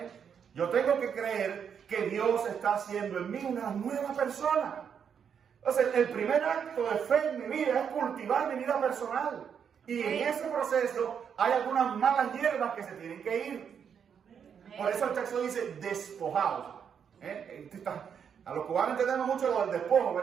Yo tengo que creer que Dios está haciendo en mí una nueva persona. Entonces, el primer acto de fe en mi vida es cultivar mi vida personal. Y en ese proceso hay algunas malas hierbas que se tienen que ir. Por eso el texto dice despojados. A los cubanos entendemos mucho lo del despojo,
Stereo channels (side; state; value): left; quieter; 7.5 dB